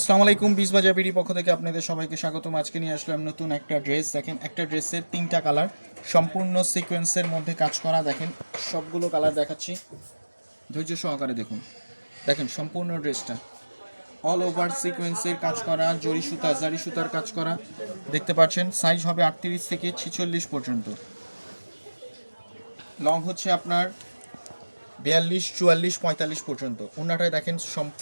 আসসালামু আলাইকুম। বিশ বাজার বিডি পক্ষ থেকে আপনাদের সবাইকে স্বাগতম। আজকে নিয়ে আসলাম নতুন একটা ড্রেস। দেখেন, একটা ড্রেসের তিনটা কালার, সম্পূর্ণ সিকোয়েন্সের মধ্যে কাজ করা। দেখেন, সবগুলো কালার দেখাচ্ছি, ধৈর্য সহকারে দেখুন। দেখেন সম্পূর্ণ ড্রেসটা অল ওভার সিকোয়েন্সের কাজ করা, জারি সুতার কাজ করা। দেখতে পাচ্ছেন সাইজ হবে 38 থেকে 46 পর্যন্ত। লং হচ্ছে আপনার 42, 44, 45 পর্যন্ত। ওনাটায় দেখেন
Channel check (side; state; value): both; inverted; correlation -1.00